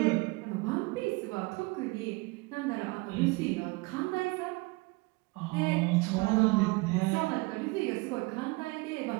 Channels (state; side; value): quieter; left; 25.4 dB